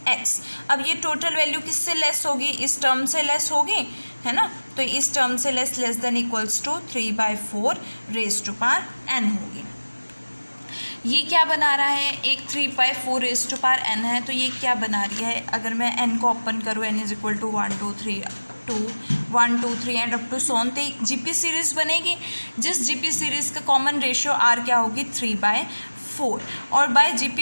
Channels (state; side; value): inverted; both; correlation -1.00